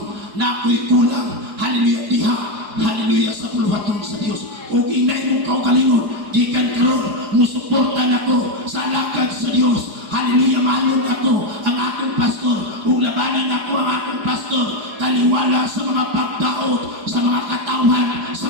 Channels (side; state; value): left; late; 4.8 ms